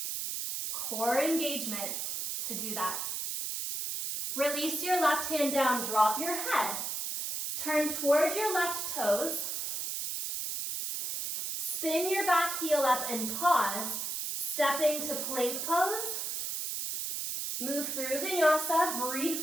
Core engagement to do that. Release your left hand down, drop your head. Turn towards your left toes. Spin your back heel up and pause, stepping to plank pose. Move through vinyasa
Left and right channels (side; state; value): right; noise; hiss, 3 dB below the sound